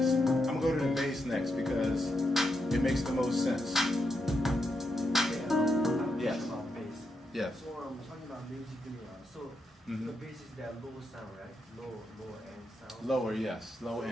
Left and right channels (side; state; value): both; normal; correlation 0.83